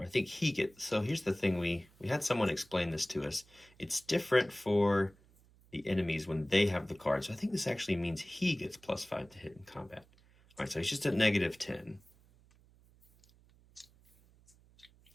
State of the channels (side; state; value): right; noise; hum, 28 dB below the sound